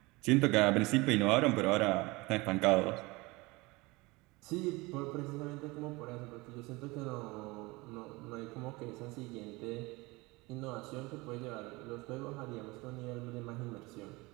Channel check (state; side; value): quieter; left; 23.4 dB